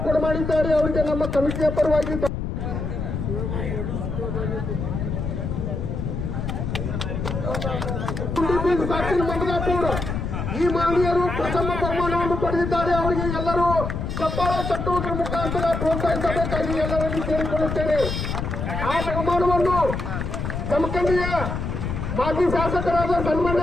ಕೊಡ ಮಾಡಿದ್ದಾರೆ. ಅವರಿಗೆ ನಮ್ಮ ಕಮಿಟಿಯ ಪರವಾಗಿ ಮಂದಗಾಪುರ ಈ ಮಹನೀಯರು ಪ್ರಥಮ ಬಹುಮಾನವನ್ನು ಪಡೆದಿದ್ದಾರೆ. ಅವರಿಗೆ ಎಲ್ಲರೂ ಚಪ್ಪಾಳ ತಟ್ಟುವುದರ ಮುಖಾಂತರ ಪ್ರೋತ್ಸಾಹಿಸಬೇಕಾಗಿ ಎಲ್ಲರನ್ನು ಕೇಳಿಕೊಳ್ಳುತ್ತೇನೆ. ಆ ಬಹುಮಾನವನ್ನು ಜಮಖಂಡಿಯ ಮಾಜಿ ಶಾಸಕರಾದ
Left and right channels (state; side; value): noise; left; rumble, 3 dB below the sound